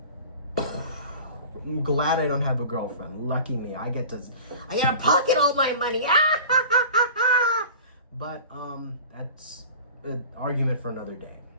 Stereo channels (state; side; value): inverted; both; correlation -0.40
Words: I'm glad I don't have a girlfriend. Lucky me. I get to pocket all my money. But that's an argument for another day.